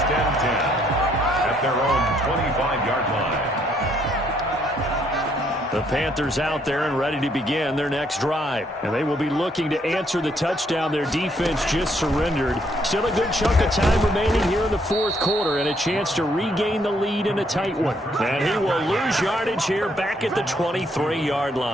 and 10 at their own 25-yard line. The Panthers out there and ready to begin their next drive. And they will be looking to answer the touchdown their defense just surrendered. Still a good chunk of time remaining here in the fourth quarter and a chance to regain the lead in a tight one. And he will lose yardage here back at the 23-yard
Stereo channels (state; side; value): normal; both; correlation 0.70